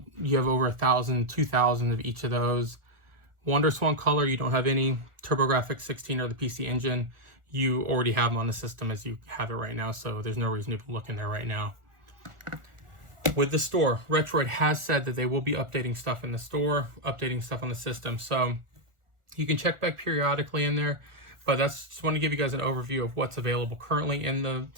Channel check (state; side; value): late; left; 1.4 ms